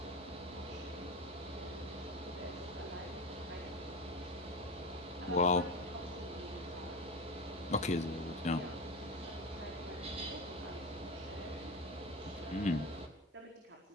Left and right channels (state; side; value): normal; both; correlation 0.24